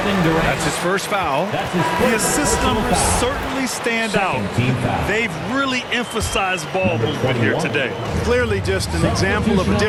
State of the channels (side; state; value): both; identical; correlation 1.00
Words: That's his first foul. The assist numbers certainly stand out. They've really emphasized ball movement here today. Clearly just an example of a